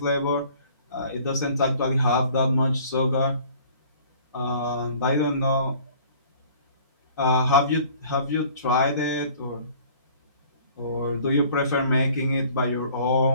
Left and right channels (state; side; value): inverted; both; correlation -0.52